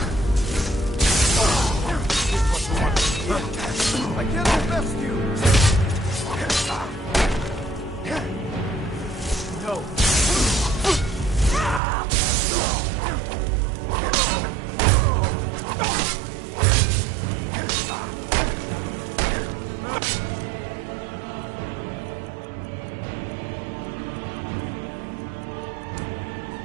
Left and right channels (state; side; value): drops out; left; at 11.8 s